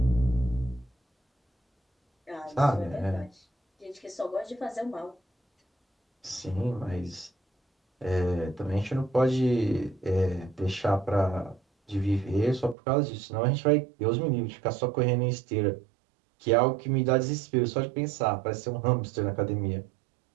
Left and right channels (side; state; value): left; drops out; at 12.8 s